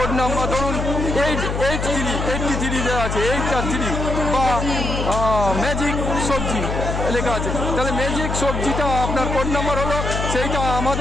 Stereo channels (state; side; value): noise; left; hum, 3 dB below the sound